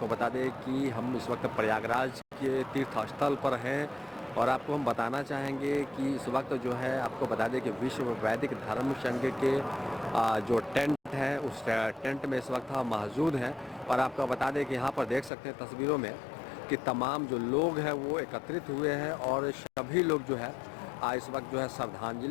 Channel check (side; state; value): right; drops out; at 15.3 s